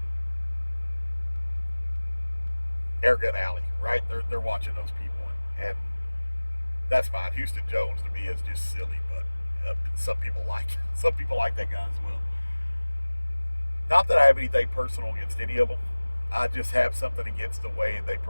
Airgun Alley, right? They're watching those people, and that's fine. Houston Jones to me is just silly, but some people like that guy as well. Not that I have anything personal against any of them. I just have something against the way they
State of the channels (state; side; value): inverted; both; correlation -1.00